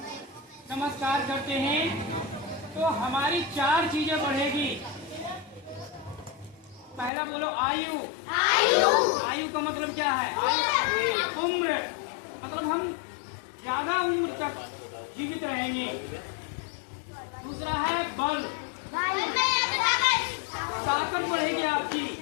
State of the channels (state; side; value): drops out; right; at 7.1 s